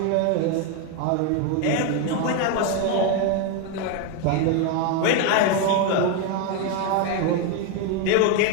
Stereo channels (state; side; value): different; both; correlation 0.02